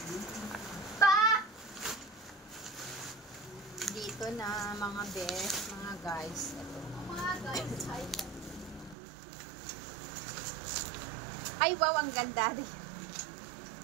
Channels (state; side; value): drops out; left; at 9.0 s